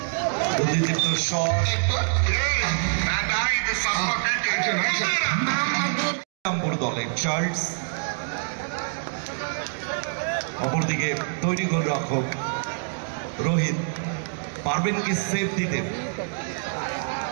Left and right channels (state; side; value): silent; left; digital silence